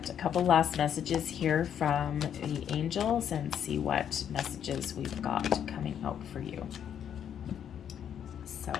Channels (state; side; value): quieter; right; 9.0 dB